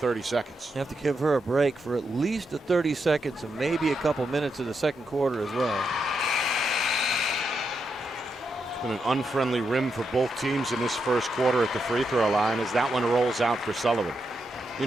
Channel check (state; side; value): normal; both; correlation 0.83